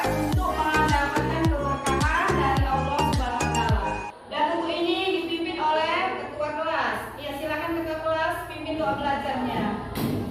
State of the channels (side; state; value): both; identical; correlation 1.00